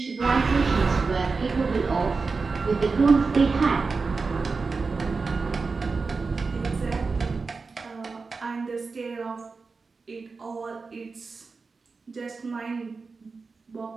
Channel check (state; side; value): quieter; left; 4.4 dB